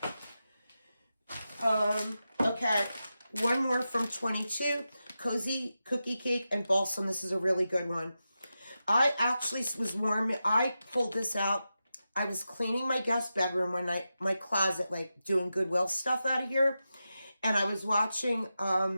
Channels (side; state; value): both; inverted; correlation -0.91